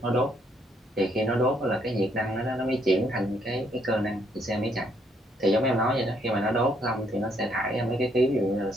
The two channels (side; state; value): both; normal; correlation 0.71